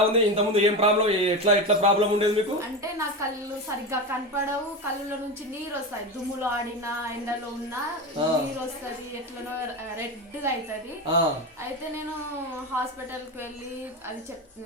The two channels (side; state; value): both; normal; correlation 0.20